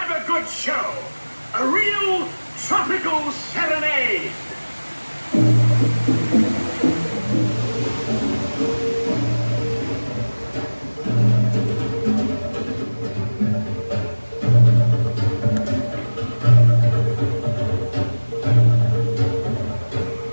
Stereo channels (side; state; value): both; inverted; correlation -1.00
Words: a good show. A real tropical serenade.